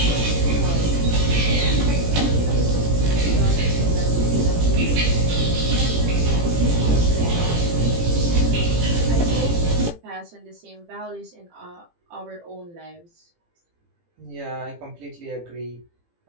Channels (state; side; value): late; left; 18 ms